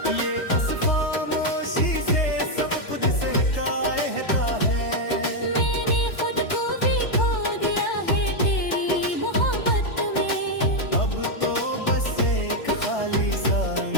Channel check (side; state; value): right; late; 3.2 ms